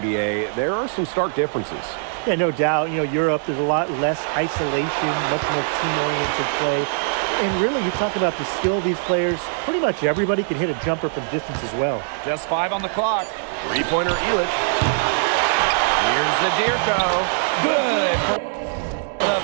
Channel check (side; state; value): left; silent; digital silence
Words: there are some stark differences. Yeah, no doubt. Europe, there's a lot less isolation, much more team-oriented play. And really, you talk about the skill of these players, pretty much everybody can hit a jumper from distance as well. Just 5 on the clock. Three-pointer Illich. Here's Zadirko. Good for the